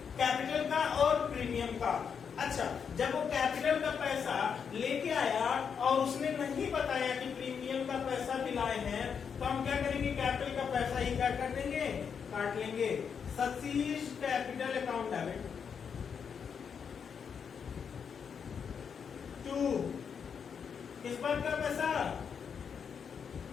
कैपिटल का और प्रीमियम का। अच्छा, जब वो कैपिटल का पैसा लेके आया और उसने नहीं बताया कि प्रीमियम का पैसा भी लाए हैं, तो हम क्या करेंगे? कैपिटल का पैसा ही क्या कर देंगे? काट लेंगे। शशि's कैपिटल अकाउंट डेबिट टू किस बात का पैसा?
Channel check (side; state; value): right; quieter; 6.8 dB